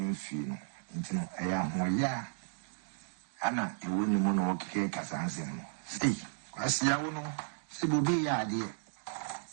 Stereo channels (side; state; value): left; silent; digital silence